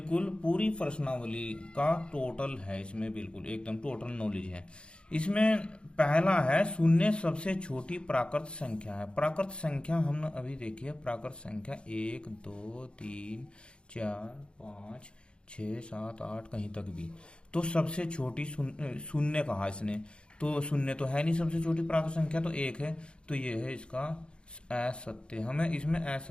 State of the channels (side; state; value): right; late; 0.055 ms